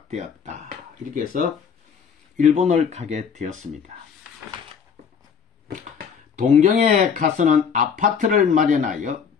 이렇게 해서 일본을 가게 되었습니다. 동경에 가서는 아파트를 마련하여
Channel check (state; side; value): quieter; right; 6.7 dB